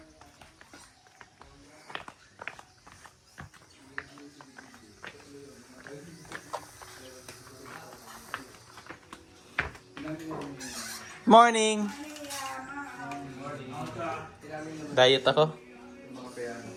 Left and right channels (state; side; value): identical; both; correlation 1.00